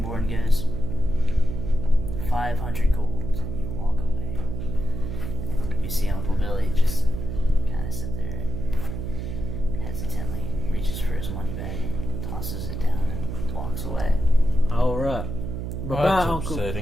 goes, 500 gold, and you walk away. And you see Uncle Billy just kind of sit there and hesitantly reaches for his money bag and tosses it down and walks away. All right. Bye, Well, that's Uncle.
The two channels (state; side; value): noise; right; hum, 5 dB below the sound